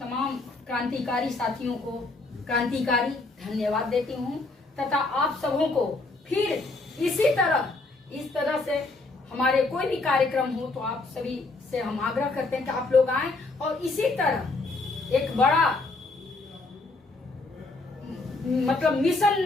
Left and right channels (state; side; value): quieter; right; 3.3 dB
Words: क्रांतिकारी साथियों को क्रांतिकारी धन्यवाद देती हूँ तथा आप सबों को फिर इस तरह से हमारे कोई भी कार्यक्रम हो तो आप सभी से हम आग्रह करते हैं कि आप लोग आएं और इसी तरह एक बड़ा मतलब मिशन